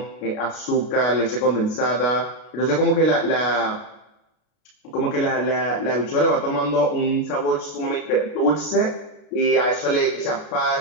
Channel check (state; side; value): late; right; 33 ms